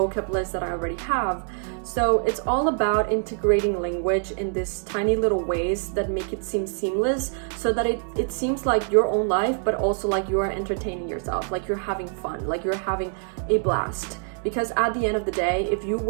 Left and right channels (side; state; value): left; silent; 62 dB below the other